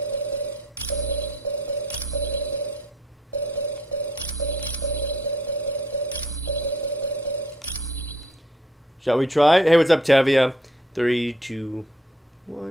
Shall we try? Hey, what's up, Tevia? 3, 2,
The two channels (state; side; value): normal; both; correlation 0.62